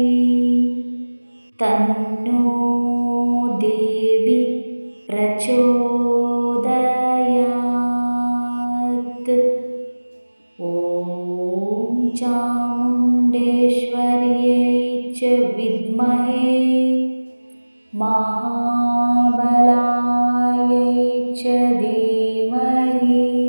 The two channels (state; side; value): inverted; both; correlation -1.00